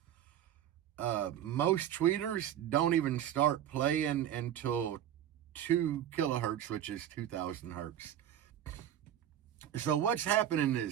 Most tweeters don't even start playing until 2 kilohertz, which is 2,000 hertz. So what's happening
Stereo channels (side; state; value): left; quieter; 10.7 dB